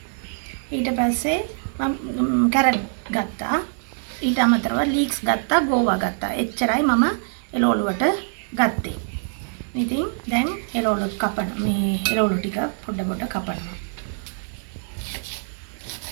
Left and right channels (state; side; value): silent; left; 63 dB below the other